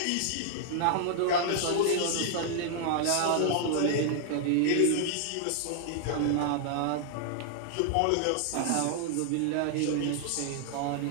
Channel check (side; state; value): both; different; correlation 0.00